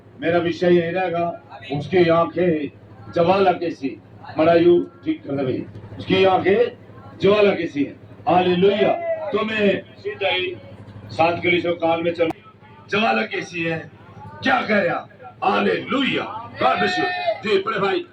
मेरा विषय यही रहेगा। उसकी आंखें ज्वाला की सी। मरायू ठीक कर दे भाई। उसकी आंखें ज्वाला की सी है। हालेलुया। तो मैं सीधा ही 7 कलीसिया काल में चल। ज्वाला कैसी है, क्या कह रहा? हालेलुया। God bless you. जी पढ़े भाई।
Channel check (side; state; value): both; identical; correlation 1.00